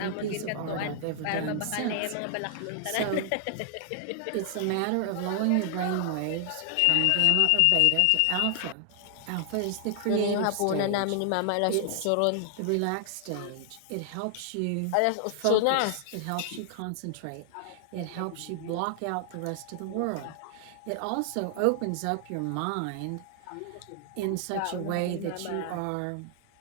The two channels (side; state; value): both; different; correlation 0.00